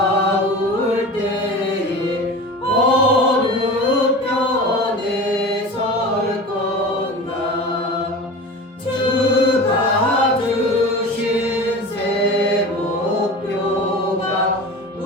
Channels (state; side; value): normal; both; correlation 0.33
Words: 때에 어느 편에 설 건가 주가 주신 새 목표가